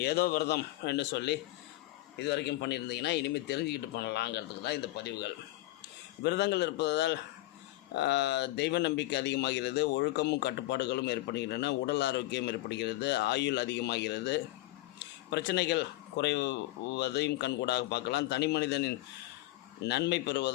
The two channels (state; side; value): quieter; right; 17.8 dB